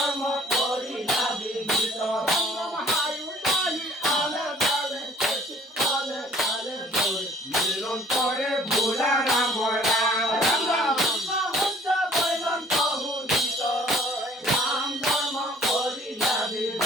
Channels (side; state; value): both; normal; correlation 0.54